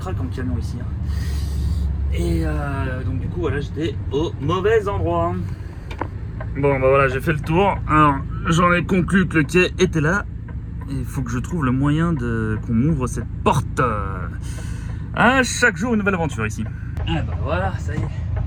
en camion ici. Hein. Et donc, du coup, voilà, j'étais au mauvais endroit. Bon, bah voilà, j'ai fait le tour. Alors, j'en ai conclu que le quai était là. Et il faut que je trouve le moyen qu'on m'ouvre cette porte. À chaque jour, une nouvelle aventure ici. Ah, bah voilà, ça y est.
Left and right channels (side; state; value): both; identical; correlation 1.00